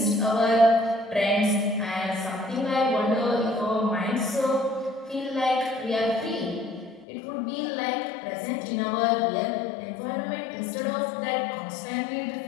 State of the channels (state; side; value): drops out; right; at 7.1 s